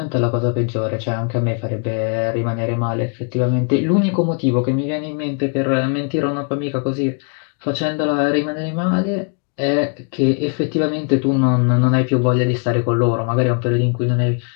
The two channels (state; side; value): quieter; right; 39.2 dB